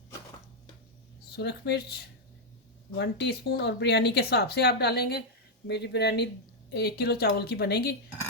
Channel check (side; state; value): both; normal; correlation -0.02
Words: सुरख मिर्च 1 टीस्पून, और बिरयानी के हिसाब से आप डालेंगे। मेरी बिरयानी 1 किलो चावल की बनेगी,